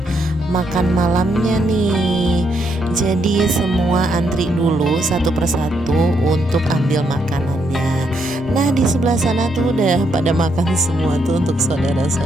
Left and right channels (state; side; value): normal; both; correlation 0.76